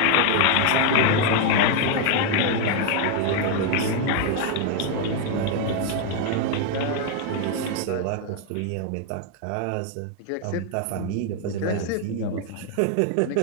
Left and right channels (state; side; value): different; both; correlation 0.01